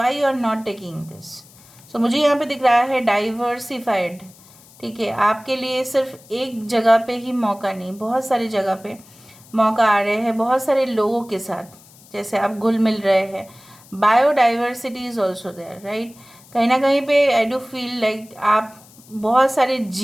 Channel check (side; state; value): left; noise; hiss, 25 dB below the sound